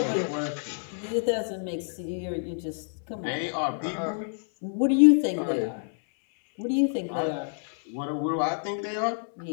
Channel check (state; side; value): silent; right; 60 dB below the other